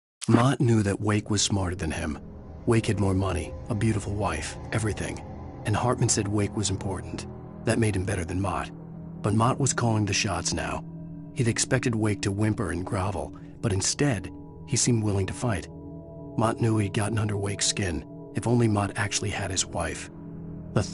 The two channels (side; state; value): both; identical; correlation 1.00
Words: Mott knew that Wake was smarter than him. Wake had more money, a beautiful wife, everything. And Hartman said Wake was important. That made him better than Mott. But Mott was calling the shots now. He'd expected Wake to whimper and grovel, but instead, he seemed willing to fight. Mott knew he'd gotten under Wake's skin. If only Mott actually had his wife. The